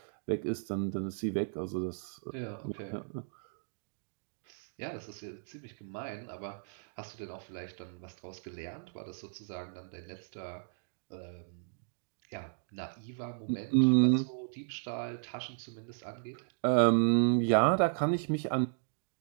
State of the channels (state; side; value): silent; left; digital silence